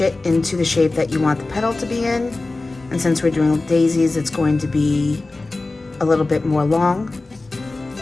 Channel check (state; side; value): quieter; right; 3.2 dB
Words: it into the shape that you want the petal to be in. And since we're doing daisies, it's going to be a little bit more long.